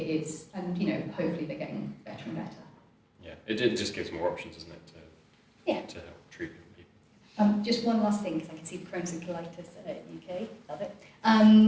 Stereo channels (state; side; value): identical; both; correlation 1.00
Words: and hopefully they're getting better and better. Yeah, it just gives more options, doesn't it, to help treat people. Just one last thing, because I can see the Crohn's and colitis UK, love it.